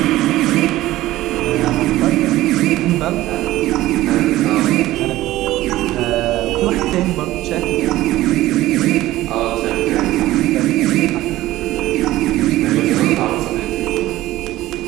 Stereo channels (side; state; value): left; quieter; 16.1 dB